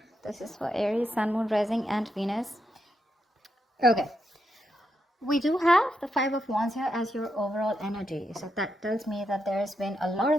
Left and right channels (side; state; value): both; normal; correlation 0.83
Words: This is for Aries, Sun, Moon, Rising, and Venus. Okay, we do have the Five of Wands here as your overall energy. So that tells me that there's been a lot